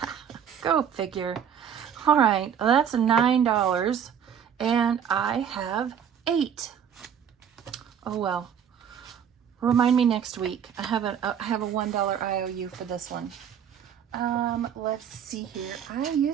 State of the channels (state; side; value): quieter; left; 8.3 dB